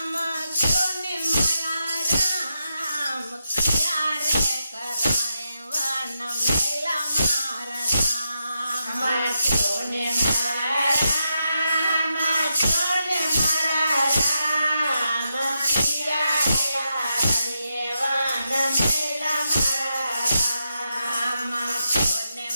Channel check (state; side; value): inverted; both; correlation -0.85